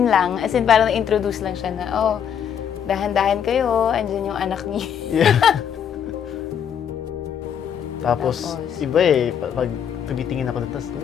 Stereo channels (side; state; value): right; quieter; 8.4 dB